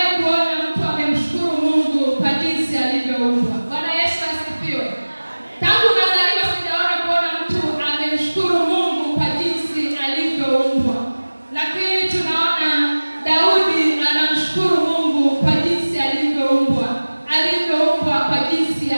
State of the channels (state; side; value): inverted; both; correlation -1.00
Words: kuona mtu amemshukuru Mungu kwa jinsi alivyoumba. Bwana Yesu asifiwe. Tangu nazaliwa sijaona kuona mtu amemshukuru Mungu kwa jinsi alivyoumbwa. Lakini tunaona Daudi anamshukuru Mungu kwa jinsi alivyoumbwa. Alivyoumbwa kwa jinsi